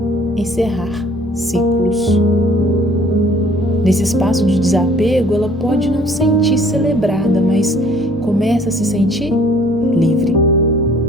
encerrar ciclos. Nesse espaço de desapego, ela pode não sentir celebrada, mas começa a se sentir livre.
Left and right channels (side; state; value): both; normal; correlation 0.56